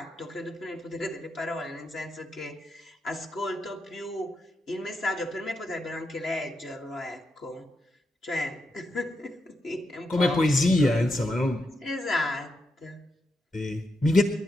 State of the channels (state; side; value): normal; both; correlation 0.84